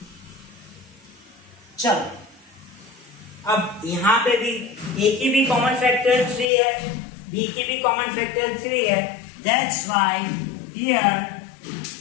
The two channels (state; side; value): drops out; right; at 6.5 s